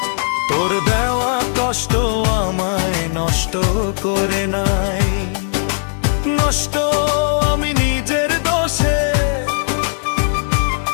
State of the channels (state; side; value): silent; right; digital silence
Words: তোর দেওয়া কষ্ট আমায় নষ্ট করে নাই। নষ্ট আমি নিজের দোষে,